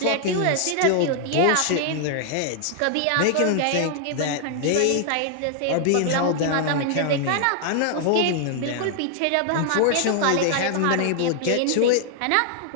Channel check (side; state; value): both; different; correlation 0.00